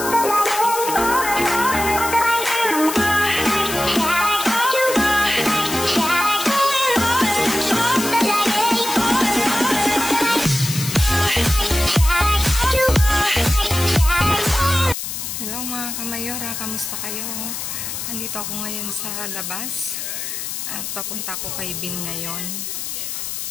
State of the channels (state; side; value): noise; left; hiss, 5 dB below the sound